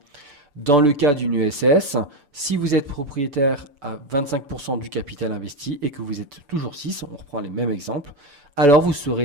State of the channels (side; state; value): left; late; 6.9 ms